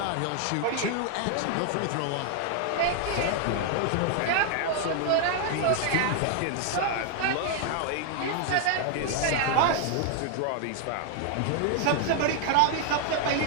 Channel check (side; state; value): both; different; correlation 0.00